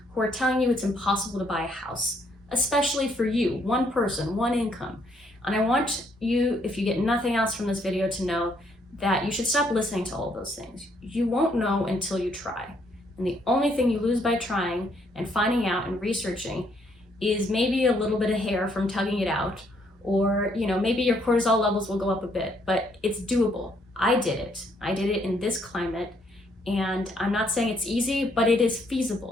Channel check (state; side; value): normal; both; correlation 0.70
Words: who are telling you it's impossible to buy a house, especially for you, one person, one income. And I want you, if you get nothing else from this video, to know that you should stop listening to all those things. You won't know until you try. And the only thing you lose by trying and finding out and researching is maybe a little bit of hair from tugging it out, or maybe your cortisol levels will go up a bit, but it's doable. I did it in this climate, and I'm not saying it's easy, but it is